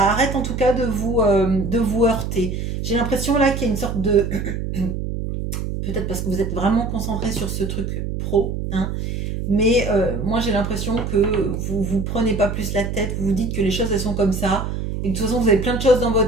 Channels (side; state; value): right; noise; hum, 4 dB below the sound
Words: arrête en tout cas de vous heurter. J'ai l'impression là qu'il y a une sorte de... Peut-être parce que vous êtes vraiment concentré sur ce truc pro, hein, mais moi j'ai l'impression que vous vous prenez pas plus la tête, vous vous dites que les choses elles sont comme ça, et que de toute façon vous avez plein de choses dans